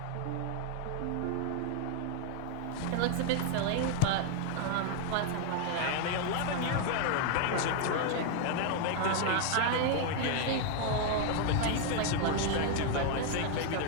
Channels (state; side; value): different; both; correlation 0.00